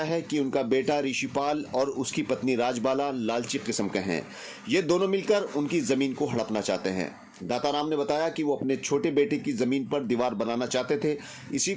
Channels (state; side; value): identical; both; correlation 1.00